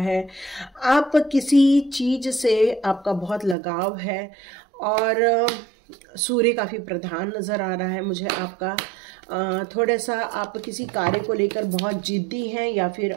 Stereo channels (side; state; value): left; drops out; at 3.6 s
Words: आप किसी चीज से आपका बहुत लगाव है और सूर्य काफी प्रधान नजर आ रहा है मुझे आपका। थोड़ा सा आप किसी कार्य को लेकर बहुत जिद्दी हैं या फिर